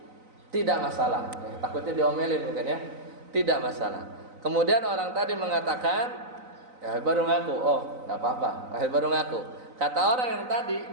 tidak masalah. Takutnya diomelin mungkin ya, tidak masalah. Kemudian orang tadi mengatakan, ya baru ngaku, oh nggak apa-apa, baru ngaku. Kata orang yang tadi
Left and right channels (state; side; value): late; left; 3.9 ms